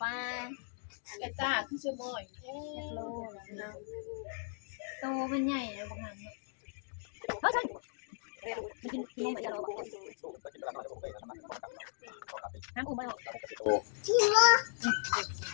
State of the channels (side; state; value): right; silent; digital silence